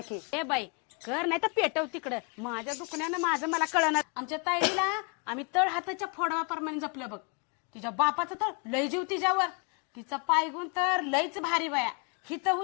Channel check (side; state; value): right; quieter; 34.8 dB